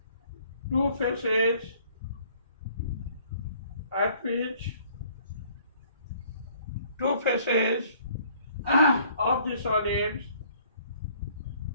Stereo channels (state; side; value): inverted; both; correlation -0.58